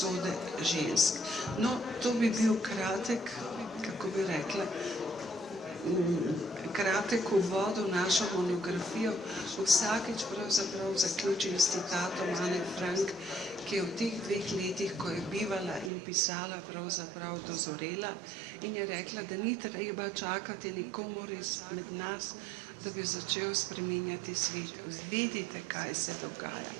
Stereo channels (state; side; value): drops out; left; at 15.9 s